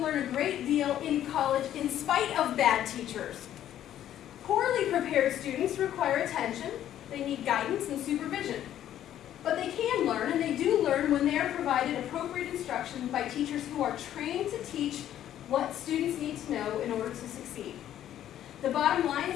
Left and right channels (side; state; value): right; quieter; 11.4 dB